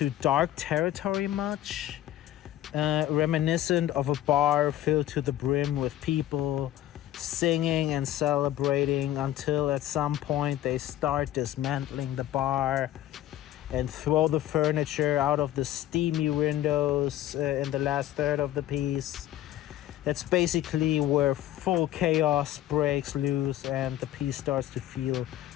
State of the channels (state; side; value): quieter; right; 13.2 dB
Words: dark territory much, reminiscent of a bar filled to the brim with people singing and celebrating until at some point they start dismantling the bar and throw the furniture out of the steamy windows in the last third of the piece. That's basically where full chaos breaks loose and the piece starts to feel